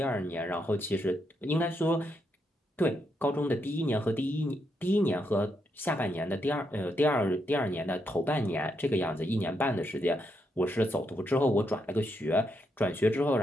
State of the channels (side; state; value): both; normal; correlation 0.80